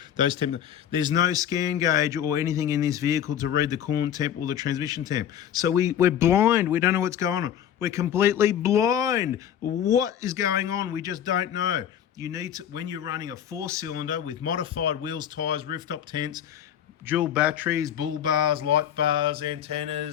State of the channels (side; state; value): right; quieter; 9.8 dB